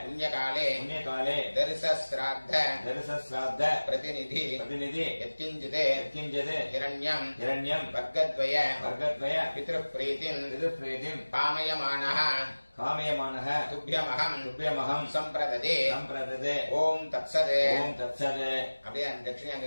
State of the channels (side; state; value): both; inverted; correlation -1.00